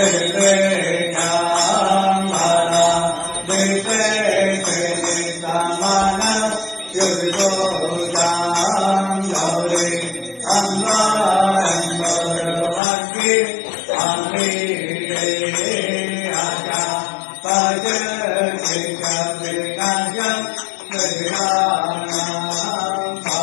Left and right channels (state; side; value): drops out; right; at 12.8 s